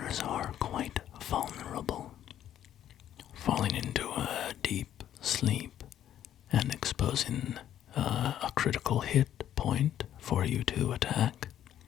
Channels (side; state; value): right; quieter; 11.0 dB